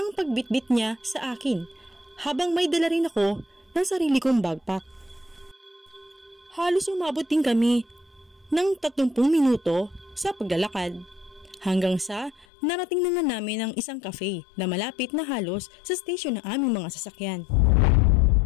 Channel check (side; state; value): right; drops out; at 12.5 s